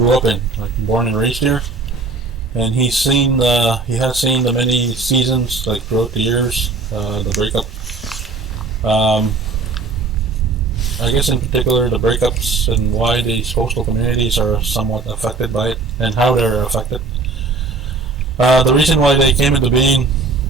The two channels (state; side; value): quieter; left; 3.9 dB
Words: up in, like born and raised here. And he has seen the many seasons, like throughout the years, the breakup. I guess in particular the breakups and why these coastal communities are somewhat affected by it and how they're affected. The reason why they came into being